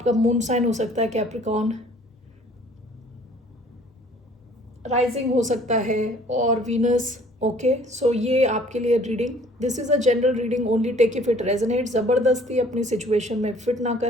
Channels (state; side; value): normal; both; correlation 0.55